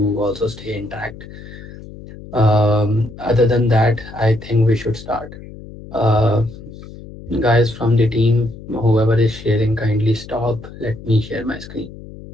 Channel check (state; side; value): noise; left; hum, 16 dB below the sound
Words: also stay intact. Other than that, I think we should start. Uh, Guys from the team, whoever is sharing, kindly stop. Let me share my screen.